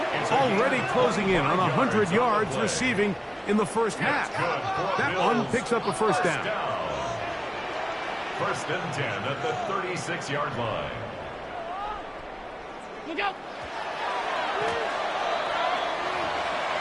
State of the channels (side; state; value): both; identical; correlation 1.00